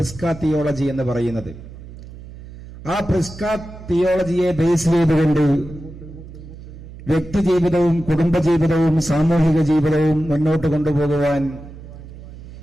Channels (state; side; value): noise; right; hum, 15 dB below the sound